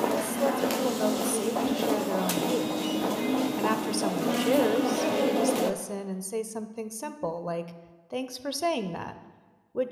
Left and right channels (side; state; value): both; identical; correlation 1.00